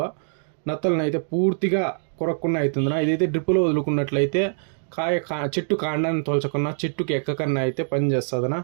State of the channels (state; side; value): silent; left; digital silence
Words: నత్తలను అయితే పూర్తిగా కొరక్కుండా అవుతుందినా. ఇదైతే డ్రిప్పులో వదులుకున్నట్లయితే చెట్టు కాండాన్ని తోల్చకుండా చెట్టుకి ఎక్కకన్నా అయితే పనిచేస్తుందనా.